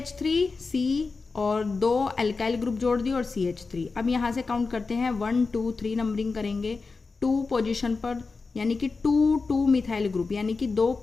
और 2 अल्काइल ग्रुप जोड़ दिए और CH3। अब यहाँ से काउंट करते हैं 1 2 3 नंबरिंग करेंगे। 2 पोजीशन पर यानी कि 2 2 मिथाइल ग्रुप, यानी कि 2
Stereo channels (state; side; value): quieter; right; 4.2 dB